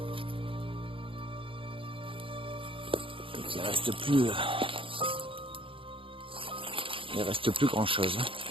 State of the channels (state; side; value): late; left; 0.26 ms